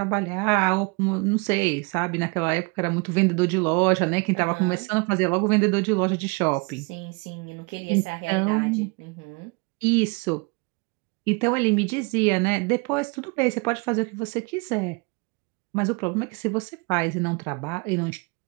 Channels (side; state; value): left; quieter; 30.2 dB